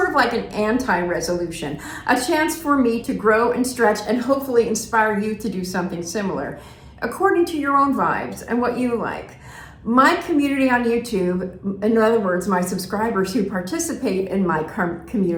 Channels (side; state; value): both; identical; correlation 1.00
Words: of like an anti-resolution, a chance for me to grow and stretch and hopefully inspire you to do something similar, according to your own vibes and what you like. My community on YouTube, in other words, my subscribers who participate in my